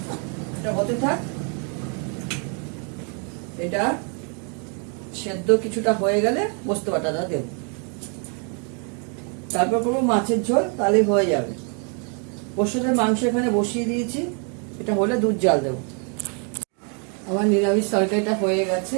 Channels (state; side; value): quieter; left; 38.7 dB